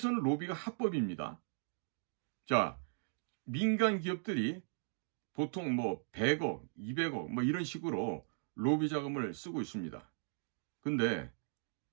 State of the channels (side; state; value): left; silent; digital silence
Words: 로비가 합법입니다. 자, 민간 기업들이 보통 100억, 200억 이런 식으로 로비 자금을 쓰고 있습니다. 근데